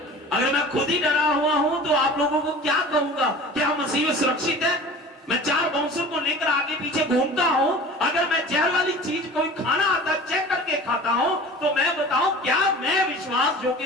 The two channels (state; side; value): normal; both; correlation 0.40